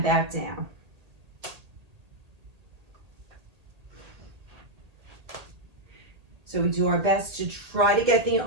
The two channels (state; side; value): late; left; 1.8 ms